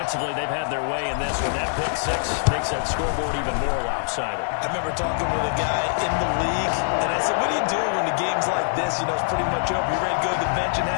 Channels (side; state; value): right; silent; 63 dB below the other